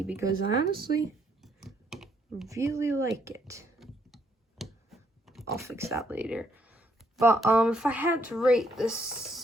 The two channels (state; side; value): normal; both; correlation 0.71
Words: because I honestly really like it. I'll fix that later. But if I had to rate this